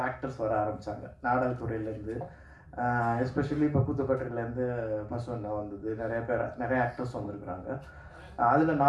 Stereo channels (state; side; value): identical; both; correlation 1.00